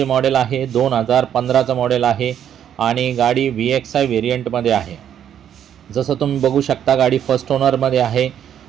मॉडेल आहे 2015चं मॉडेल आहे आणि गाडी VXI व्हेरियंटमध्ये आहे. जसं तुम्ही बघू शकता गाडी फर्स्ट ओनरमध्ये आहे.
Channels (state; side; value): quieter; left; 9.6 dB